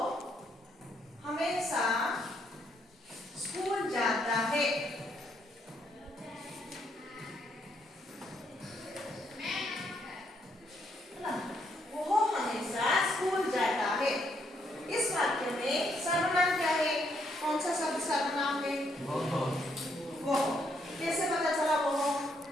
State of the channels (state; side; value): normal; both; correlation 0.73